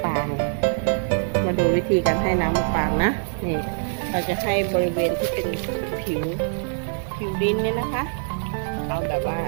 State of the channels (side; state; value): left; silent; digital silence